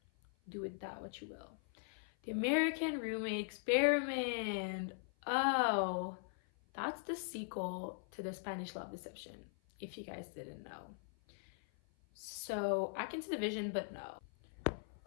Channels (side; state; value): right; silent; 51 dB below the other